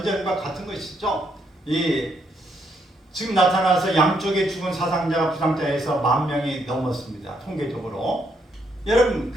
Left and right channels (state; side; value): normal; both; correlation 0.75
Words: 같은 것이죠. 이 지금 나타나서 양쪽에 죽은 사상자가 부상자에서 10,000명이 넘었습니다. 통계적으로. 여러분,